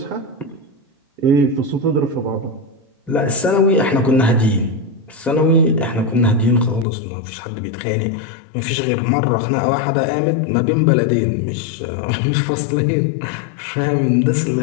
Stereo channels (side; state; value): right; drops out; at 6.9 s